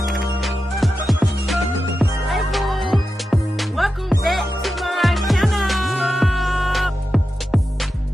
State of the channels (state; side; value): normal; both; correlation 0.91